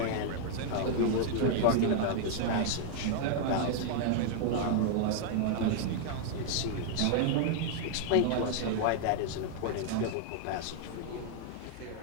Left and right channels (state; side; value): different; both; correlation -0.01